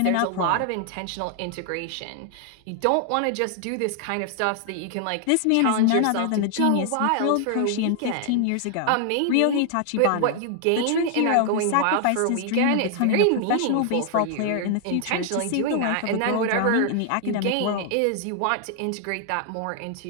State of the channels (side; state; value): both; different; correlation 0.00